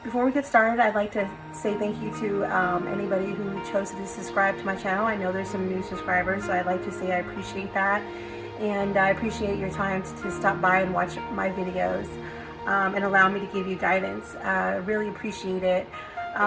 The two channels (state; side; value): identical; both; correlation 1.00